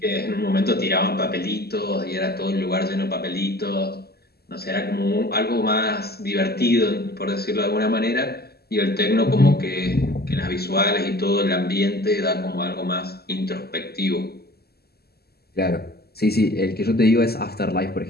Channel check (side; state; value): right; late; 0.46 ms